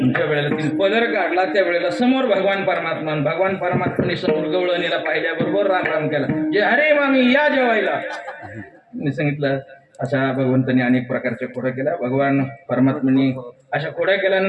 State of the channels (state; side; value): identical; both; correlation 1.00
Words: ज्या वेळेला तिने पदर काढला त्या वेळेला समोर भगवान परमात्माने समोर गवळणीला पाहिल्याबरोबर राम राम केला. जे अरे मामी या जेवायला. मी सांगितलं अशा भगवंतांनी अनेक प्रकारच्या खोड्या केल्या. भगवान परमात्म्याने अशा खोड्या